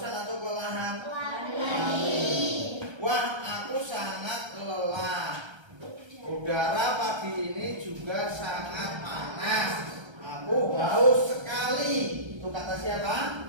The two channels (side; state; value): left; late; 1.3 ms